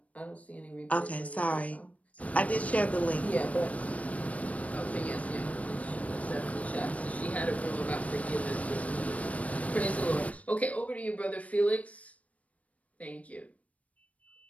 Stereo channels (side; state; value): right; late; 0.067 ms